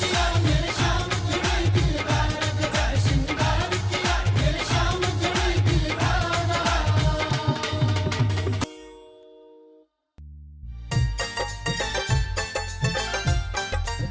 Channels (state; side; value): identical; both; correlation 1.00